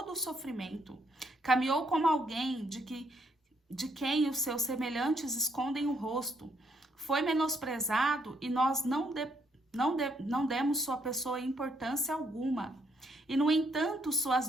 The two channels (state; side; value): normal; both; correlation 0.72